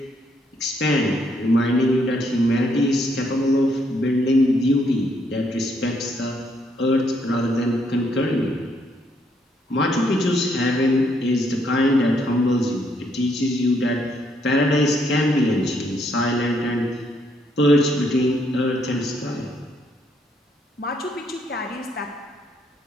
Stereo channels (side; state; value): both; normal; correlation 0.72